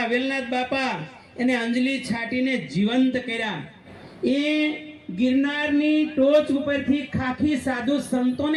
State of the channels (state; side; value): identical; both; correlation 1.00